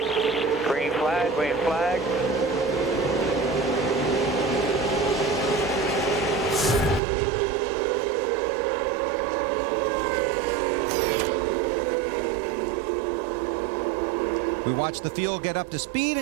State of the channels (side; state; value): left; drops out; at 7.0 s